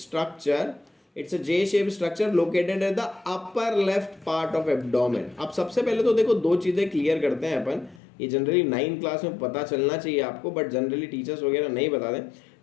It's a J shape structure located at the upper left part of abdomen. अब सबसे पहले तो देखो, दो चीजें क्लियर करते हैं अपन। ये जनरली 9th क्लास में पता चलना चाहिए आपको, बट जनरली टीचर्स वगैरह नहीं बता दें।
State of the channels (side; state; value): right; drops out; at 8.0 s